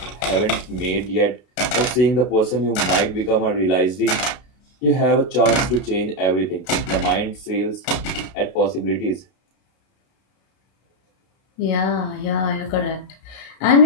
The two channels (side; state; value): right; late; 32 ms